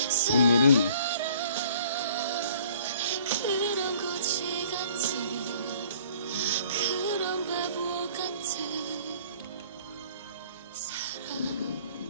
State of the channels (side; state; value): both; inverted; correlation -0.55